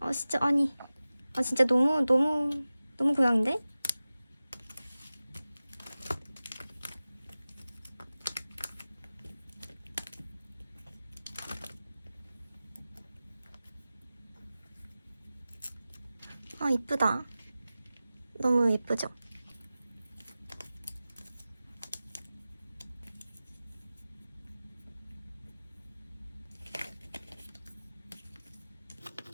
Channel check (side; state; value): both; inverted; correlation -0.96